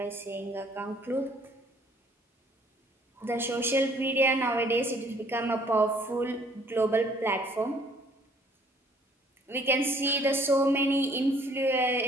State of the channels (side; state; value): both; normal; correlation 0.60